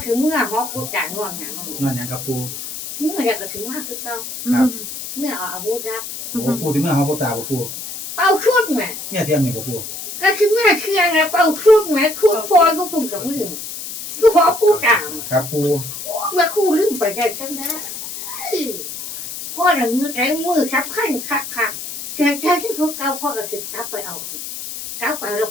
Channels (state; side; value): noise; left; hiss, 8 dB below the sound